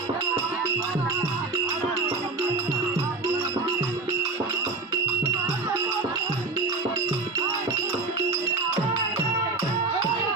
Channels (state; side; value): quieter; left; 3.6 dB